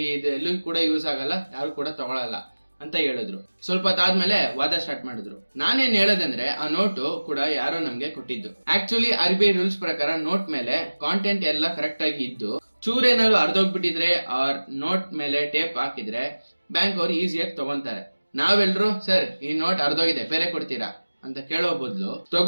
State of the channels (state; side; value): inverted; both; correlation -1.00